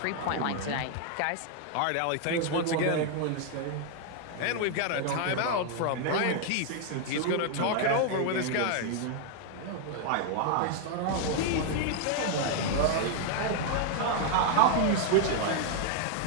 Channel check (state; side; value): different; both; correlation 0.00